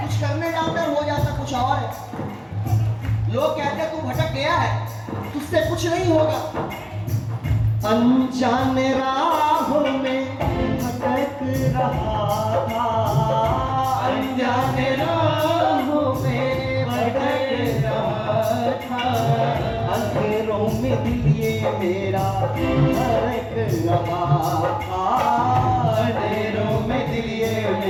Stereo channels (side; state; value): both; identical; correlation 1.00